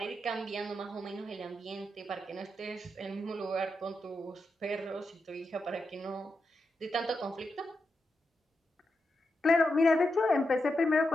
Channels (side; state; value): both; normal; correlation 0.86